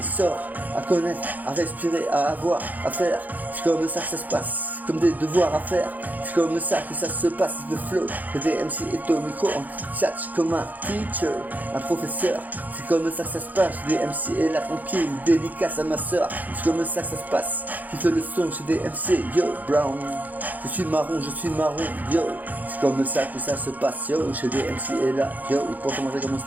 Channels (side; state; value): left; late; 0.081 ms